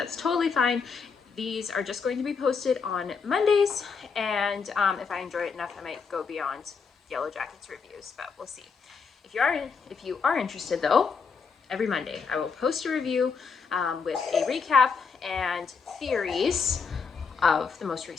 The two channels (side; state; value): right; quieter; 5.5 dB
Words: totally fine. These are just going to be posted on Mondays, and if I enjoy it enough, I might go beyond Yellowjackets reviews, but we'll see. If you are interested though, every Monday I will post a review with a recap and theories of the most